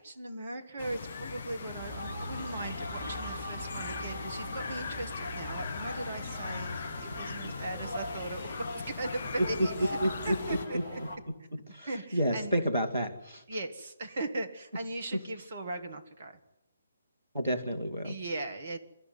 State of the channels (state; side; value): inverted; both; correlation -0.79